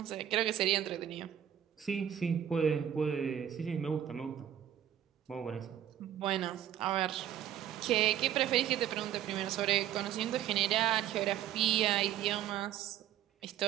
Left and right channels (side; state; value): left; quieter; 10.6 dB